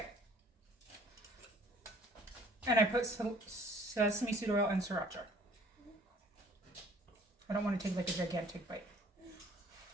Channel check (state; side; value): normal; both; correlation 0.55